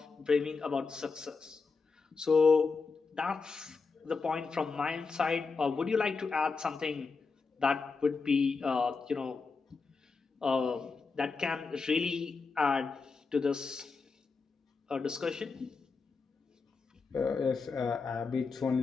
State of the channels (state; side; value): quieter; right; 4.6 dB